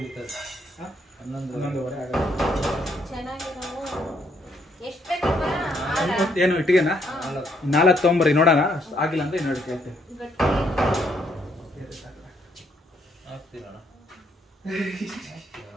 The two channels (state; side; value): normal; both; correlation 0.71